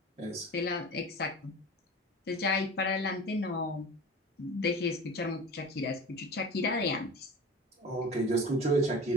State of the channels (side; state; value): both; normal; correlation 0.36